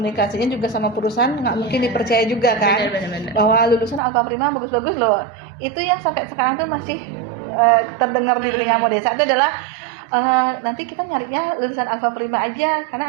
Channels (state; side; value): drops out; left; at 4.0 s